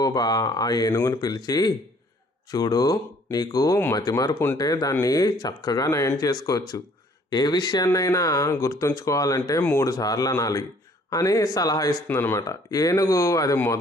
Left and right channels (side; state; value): both; normal; correlation 0.59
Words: ఆ ఏనుగుని పిలిచి, చూడు, నీకు మతిమరుపు ఉంటే దాన్ని చక్కగా నయం చేసుకోవచ్చు. ఏ విషయాన్నైనా గుర్తుంచుకోవాలంటే 3 సార్లు అనాలి అని సలహా ఇస్తుందన్నమాట. ఏనుగు అది